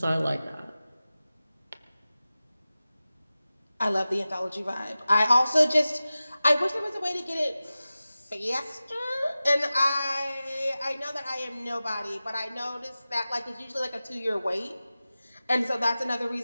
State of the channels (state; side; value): inverted; both; correlation -0.96